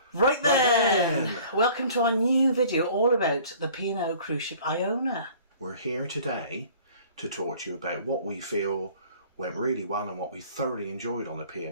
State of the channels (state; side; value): inverted; both; correlation -0.50